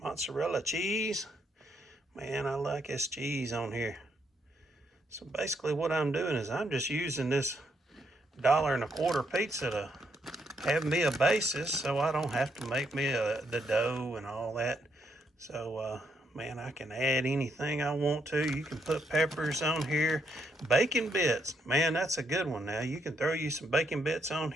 cheese. Man, I like this cheese on here. So basically what I'm doing is I'm just using this $1.25 pizza to have me a basis so I don't have to make me the dough and all that. So man, I can add anything I want to. You can put peppers on here. Bacon bits, man, that's a good one. Now you can throw you some bacon bits on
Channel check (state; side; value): normal; both; correlation 0.76